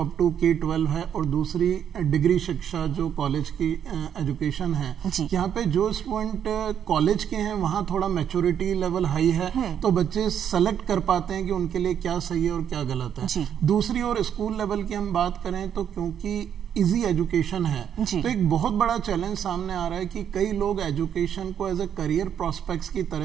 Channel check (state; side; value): quieter; left; 8.9 dB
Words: अप टू K-12 है और दूसरी डिग्री शिक्षा जो कॉलेज की एजुकेशन है। यहाँ पे जो स्टूडेंट कॉलेज के हैं वहाँ थोड़ा मैच्योरिटी लेवल हाई है, तो बच्चे सेलेक्ट कर पाते हैं कि उनके लिए क्या सही है और क्या गलत है। दूसरी ओर स्कूल लेवल की हम बात करें तो क्योंकि इजी एजुकेशन है तो एक बहुत बड़ा चैलेंज सामने आ रहा है कि कई लोग एजुकेशन को एज ए करियर प्रोस्पेक्ट्स की